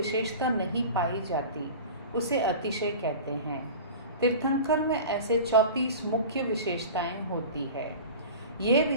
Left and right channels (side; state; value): both; inverted; correlation -0.36